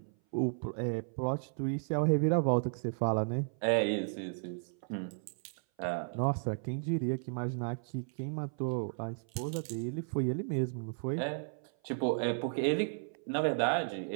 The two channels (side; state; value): left; silent; 55 dB below the other